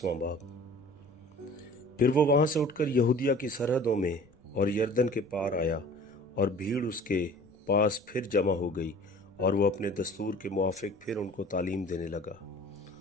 बाब। फिर वो वहाँ से उठकर यहूदिया की सरहदों में और यरदन के पार आया और भीड़ उसके पास फिर जमा हो गई और वो अपने दस्तूर के मुआफ़िक फिर उनको तालीम देने लगा।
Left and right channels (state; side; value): noise; right; rumble, 29 dB below the sound